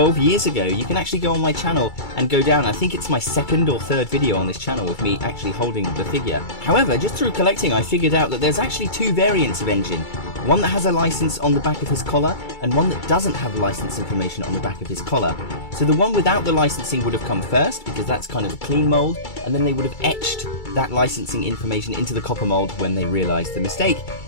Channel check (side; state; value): right; late; 2.3 ms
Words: years ago. You can actually go on my channel and go down. I think it's my second or third video on this channel with me actually holding the figure. However, just through collecting, I figured out that there's actually two variants of N.Gin. One that has a license on the back of his collar, and one that doesn't have license information on the back of his collar. So the one without the licensing would have come first, because that's kind of a clean mold, and then they would have etched that licensing information into the copper mold when they realized the mistake.